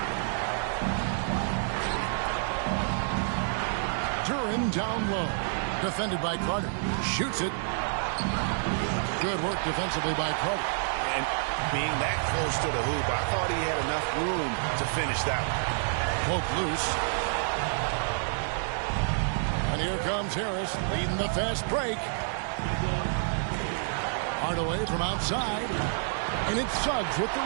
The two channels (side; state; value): left; silent; digital silence